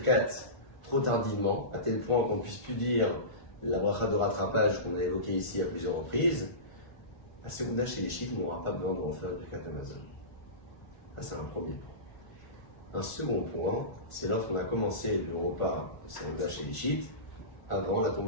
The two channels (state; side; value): late; right; 1.5 ms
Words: trop tardivement, à tel point qu'on ne puisse plus dire la bracha de rattrapage qu'on a évoquée ici à plusieurs reprises, à Serouda chez les chiites, on n'aura pas besoin de refaire le Birkat Hamazon. Ça, c'est un premier point. Un second point, c'est lorsqu'on a commencé le repas de Serouda chez les chiites avant la